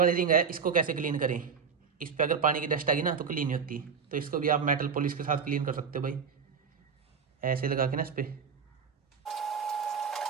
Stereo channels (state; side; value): quieter; left; 6.3 dB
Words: रिंग है इसको कैसे क्लीन करें। इस पर अगर पानी की डस्ट आ गई ना तो क्लीन नहीं होती, तो इसको भी आप मेटल पॉलिश के साथ क्लीन कर सकते हो भाई, ऐसे लगा के ना इस पर।